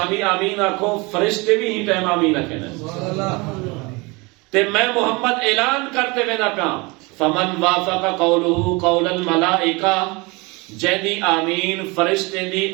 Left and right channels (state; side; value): quieter; left; 26.3 dB